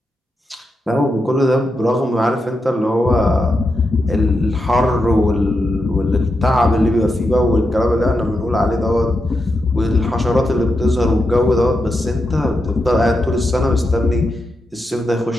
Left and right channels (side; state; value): both; normal; correlation 0.86